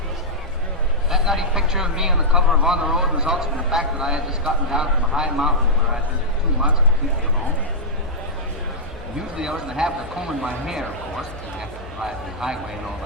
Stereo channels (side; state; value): both; normal; correlation -0.11